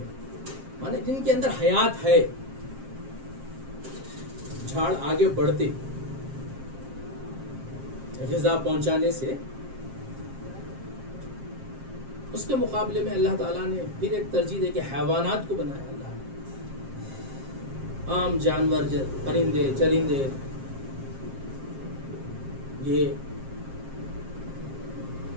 مانے جن کے اندر حیات ہے. جھاڑ آگے بڑھتے، غذا پہنچانے سے، اس کے مقابلے میں اللہ تعالیٰ نے پھر ایک ترجیح دے کہ حیوانات کو بنایا. اللہ نے عام جانور، پرندے چرندے، یہ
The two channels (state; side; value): late; left; 7.5 ms